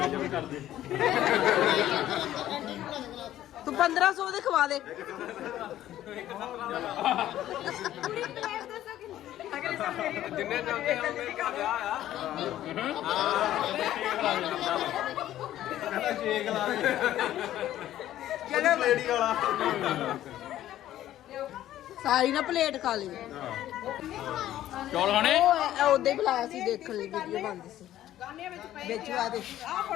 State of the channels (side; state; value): right; quieter; 13.0 dB